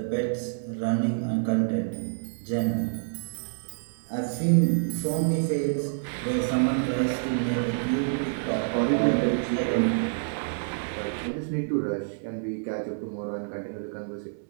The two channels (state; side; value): silent; left; digital silence